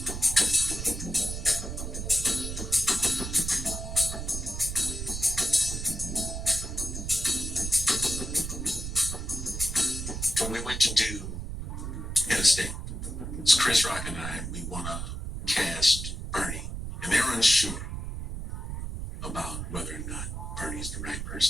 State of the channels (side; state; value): right; noise; rumble, 5 dB below the sound